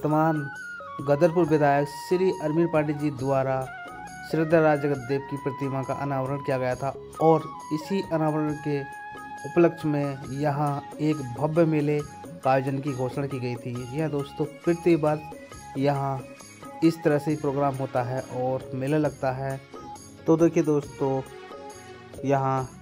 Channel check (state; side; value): identical; both; correlation 1.00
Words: गदरपुर विधायक श्री अरविंद पांडे जी द्वारा श्रद्धा राज जगतदेव की प्रतिमा का अनावरण किया गया था और इसी अनावरण के उपलक्ष्य में यहाँ एक भव्य मेले का आयोजन की घोषणा की गई थी। जी हाँ दोस्तों, प्रति बार यहाँ इस तरह से प्रोग्राम होता है और मेला लगता है। तो देखिए दोस्तों, यहाँ